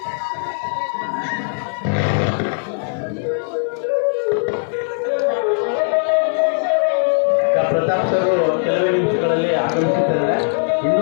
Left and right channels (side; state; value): right; silent; digital silence